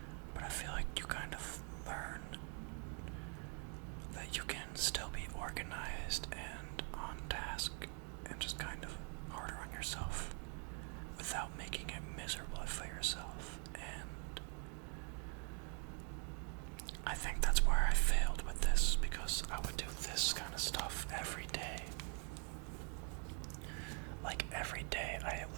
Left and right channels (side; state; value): left; quieter; 39.9 dB